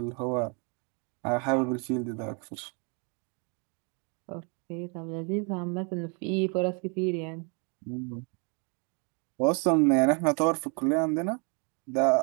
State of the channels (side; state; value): left; quieter; 36.0 dB